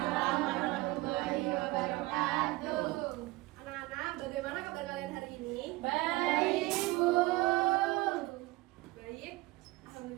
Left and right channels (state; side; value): quieter; left; 20.7 dB